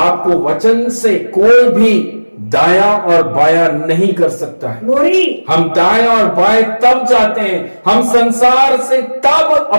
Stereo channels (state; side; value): inverted; both; correlation -1.00